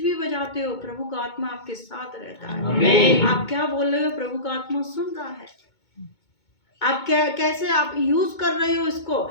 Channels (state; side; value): late; right; 2.2 ms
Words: भी बजाते हो, प्रभु का आत्मा आपके साथ रहता है। आमीन। आप क्या बोल रहे हो, प्रभु का आत्मा सुन रहा है। आप क्या कैसे आप यूज कर रहे हो इसको।